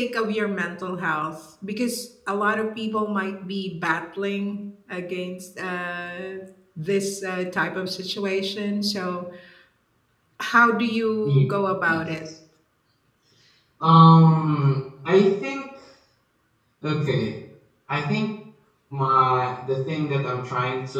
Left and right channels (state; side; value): identical; both; correlation 1.00